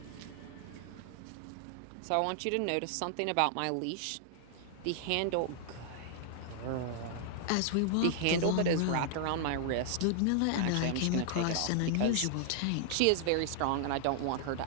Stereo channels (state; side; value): different; both; correlation 0.00